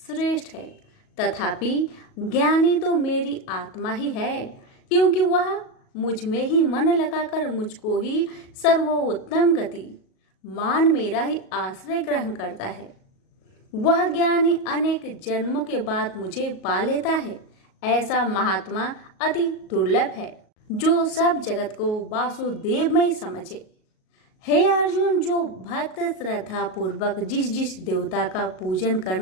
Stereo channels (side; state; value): right; late; 38 ms